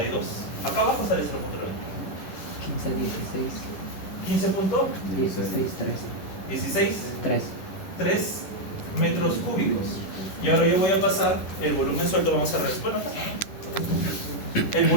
Acá abajo sale 0.92. 15, 16. 16, 3. 3 metros cúbicos. Y ahora yo voy a pasar el volumen suelto. Vamos a ver. Bueno, el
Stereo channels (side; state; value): right; late; 10 ms